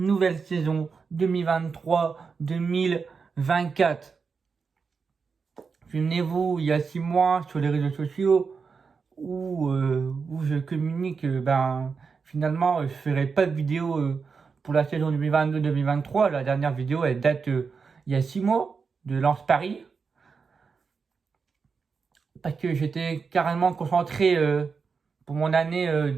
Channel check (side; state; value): left; quieter; 5.3 dB